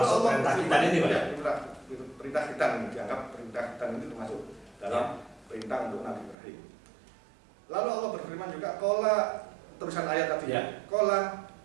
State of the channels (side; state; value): left; drops out; at 6.4 s